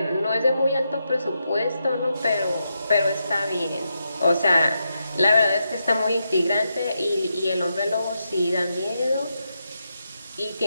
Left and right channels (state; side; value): inverted; both; correlation -0.84